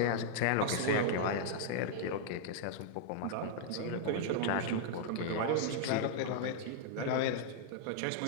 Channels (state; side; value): different; both; correlation -0.01